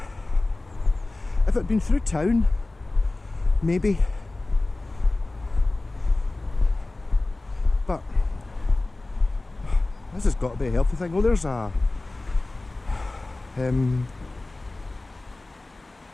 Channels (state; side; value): quieter; right; 3.0 dB